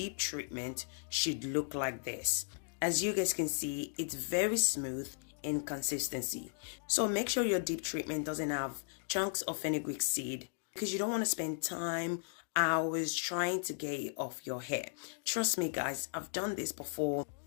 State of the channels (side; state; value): right; silent; digital silence